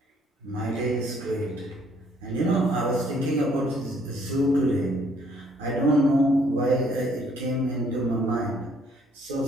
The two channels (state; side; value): normal; both; correlation 0.64